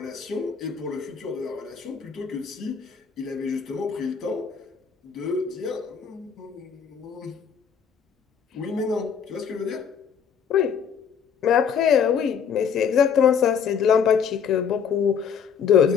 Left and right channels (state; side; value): quieter; right; 7.2 dB